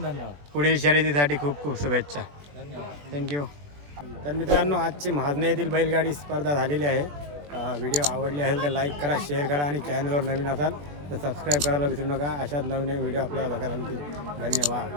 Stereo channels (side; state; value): left; late; 21 ms